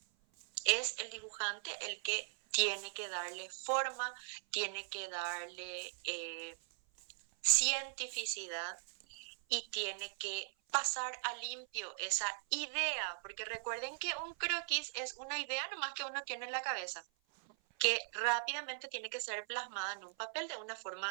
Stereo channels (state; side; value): silent; left; 51 dB below the other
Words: Es el dibujante el que tiene que darle forma, tiene que darle cientificidad y tiene que pasar a limpio esa idea, porque recuerden que un croquis es una idea nomás que uno tiene en la cabeza, que rápidamente tiene que ser plasmada en un papel de una